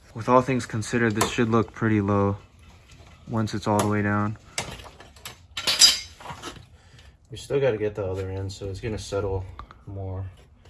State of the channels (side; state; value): both; identical; correlation 1.00